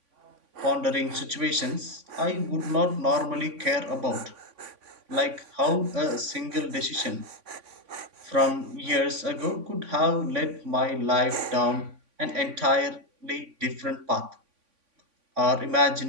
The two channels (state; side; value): late; left; 3.5 ms